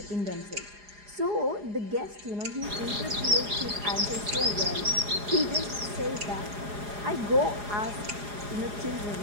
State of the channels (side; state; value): left; late; 4.8 ms